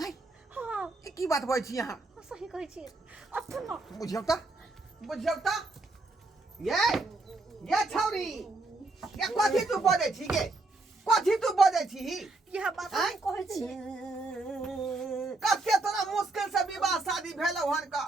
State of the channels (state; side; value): quieter; left; 3.2 dB